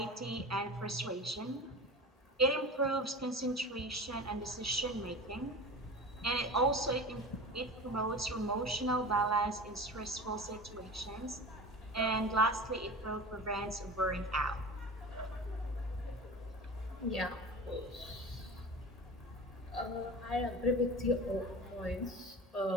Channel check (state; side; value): normal; both; correlation 0.33